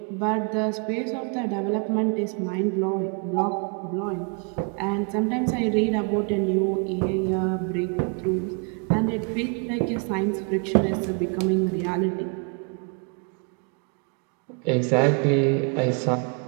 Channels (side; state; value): left; quieter; 38.0 dB